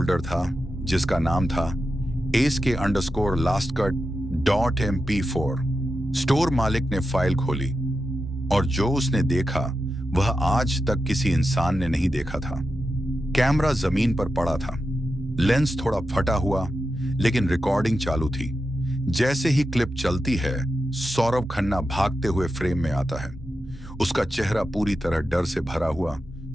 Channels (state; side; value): normal; both; correlation 0.89